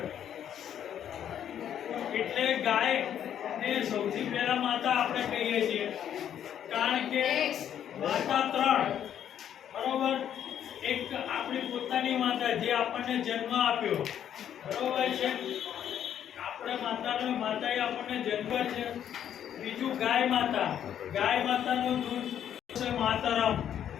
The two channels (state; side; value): quieter; right; 9.8 dB